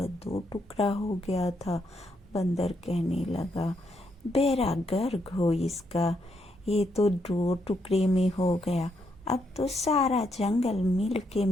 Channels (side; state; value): both; normal; correlation 0.77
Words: दो टुकड़ा हो गया था। बंदर कहने लगा, बेड़ा गर्क हो इसका, ये तो दो टुकड़े में हो गया। अब तो सारा जंगल मिल के